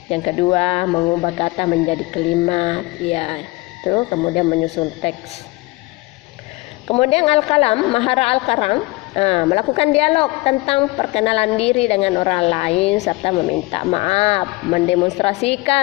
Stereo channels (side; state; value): right; quieter; 23.2 dB